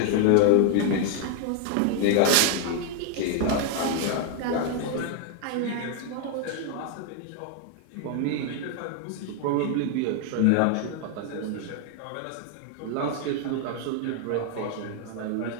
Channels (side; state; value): both; different; correlation 0.00